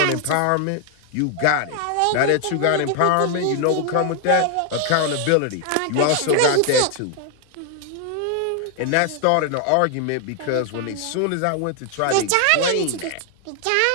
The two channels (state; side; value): different; both; correlation 0.00